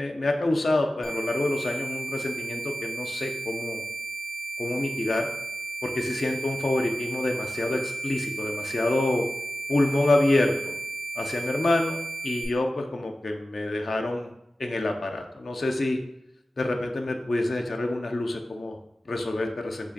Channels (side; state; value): both; normal; correlation 0.95